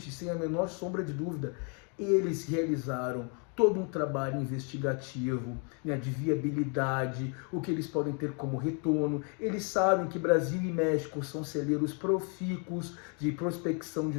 sem a menor sombra de dúvida, eles realizaram todo um trabalho investigativo, né, de viabilidade, o que eles podem ter como retorno. Eles sabem que Brasil e México são celeiros profícuos de prospecção de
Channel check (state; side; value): quieter; right; 37.7 dB